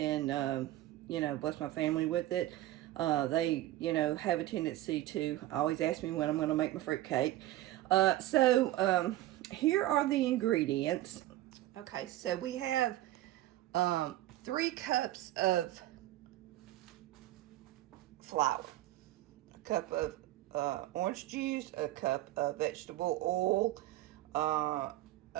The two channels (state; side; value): quieter; left; 15.4 dB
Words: bless my family with it. They have a tendency to always ask me when I'm going to make my fruit cake. So here are the ingredients. Okay, so we have 3 cups of flour, a cup of orange juice, a cup of vegetable oil,